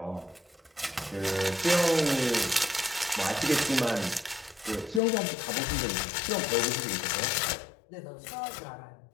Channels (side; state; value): right; drops out; at 5.0 s